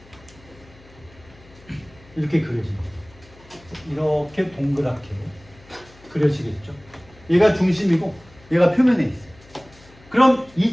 이렇게 그려집니다. 이렇게 동그랗게 그려지겠죠. 얘가 중심이고 얘가 표면에 있어요. 그럼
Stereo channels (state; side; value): noise; left; hum, 25 dB below the sound